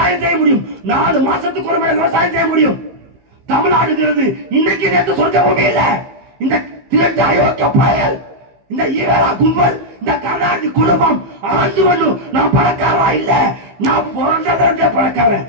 செய்ய முடியும். 4 மாசத்துக்கு ஒரு முறை விவசாயம் செய்ய முடியும். தமிழ்நாடுங்கிறது இன்னைக்கு நேற்று சொர்க்க பூமி இல்ல. இந்த திரட்டு அயோக்கிய பயல், இந்த ஈரா கும்பல், இந்த கர்நாடக குடும்பம் ஆண்டு ஒண்ணு நான் பணக்காரா இல்ல, நான் பிறந்தவரே பணக்காரன்,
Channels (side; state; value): left; late; 15 ms